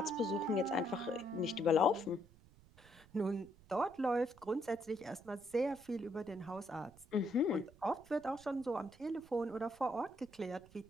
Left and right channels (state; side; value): noise; right; rumble, 25 dB below the sound